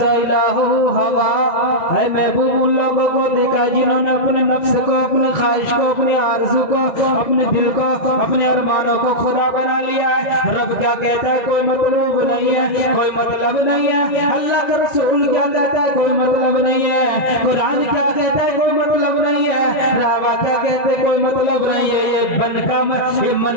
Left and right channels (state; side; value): late; right; 1.9 ms